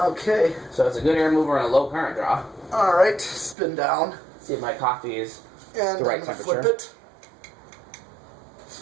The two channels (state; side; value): drops out; left; at 3.6 s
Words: Okay. So it's a good air mover and a low current draw. All right. Spin down. See if my coffee is And the right I'm gonna temperature. flip it.